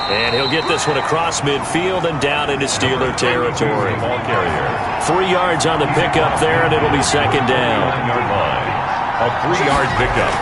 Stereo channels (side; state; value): both; identical; correlation 1.00